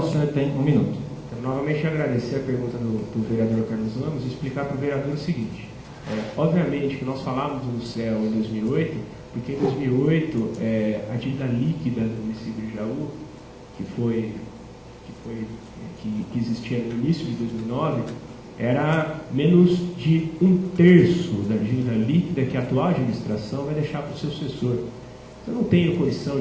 senhor tem 1 minuto. Quero novamente agradecer a pergunta do vereador Carlos Ramos e explicar para o vereador o seguinte. Obviamente que nós falávamos no CEL em 2008, porque em 2008 a dívida líquida do município de Jaú, que existia no início de 2009, era menos de 1/3 da dívida líquida que a atual administração vai deixar para o seu sucessor. Eu não tenho condição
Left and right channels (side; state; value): both; identical; correlation 1.00